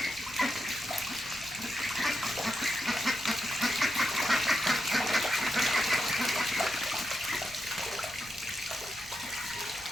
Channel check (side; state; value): right; noise; rumble, 22 dB below the sound